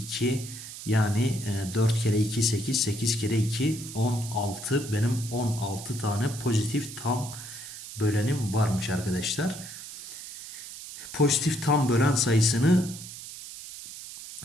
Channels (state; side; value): noise; right; hiss, 12 dB below the sound